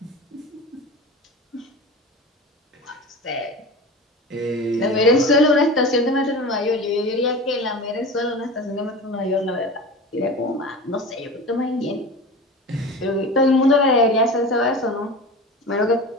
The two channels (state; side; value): normal; both; correlation 0.32